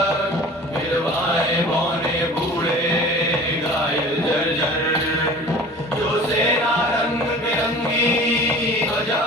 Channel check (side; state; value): both; normal; correlation 0.42